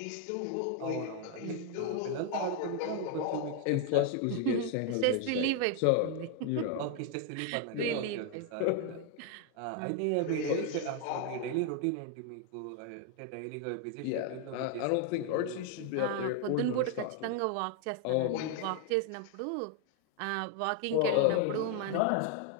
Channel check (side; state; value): both; different; correlation 0.00